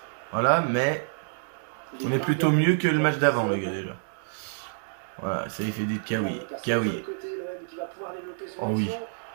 Voilà, mais... On est plutôt mieux que le match d'avant, les gars, déjà. Voilà, ça il fait dit Kawi. Kawi. Oh oui.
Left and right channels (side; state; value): left; silent; digital silence